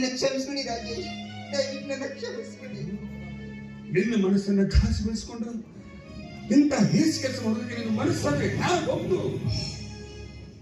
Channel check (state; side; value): identical; both; correlation 1.00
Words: ಕ್ಷಮಿಸ್ಬಿಡಿ ರಾಜೇಶ್, ದಯವಿಟ್ಟು ನನ್ನ ಕ್ಷಮಿಸ್ಬಿಡಿ. ನಿನ್ನ ಮನಸ್ಸನ್ನ ಘಾಸಿಗೊಳಿಸಿಕೊಂಡು ಇಂಥ ಹೇಸಿ ಕೆಲಸ ಮಾಡೋದಕ್ಕೆ ನಿನ್ನ ಮನಸ್ಸಾದ್ರೆ ಒಂದು